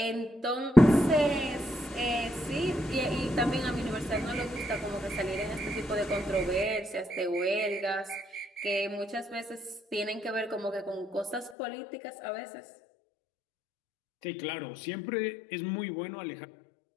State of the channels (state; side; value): drops out; right; at 11.6 s